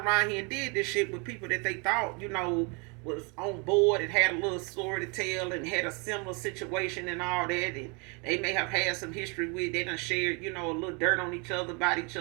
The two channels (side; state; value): left; quieter; 32.2 dB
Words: here and did this shit with people that they thought, was on board and had a little story to tell and had a similar situation and all that. And they may have had some history with, they done shared, a little dirt on each other, about each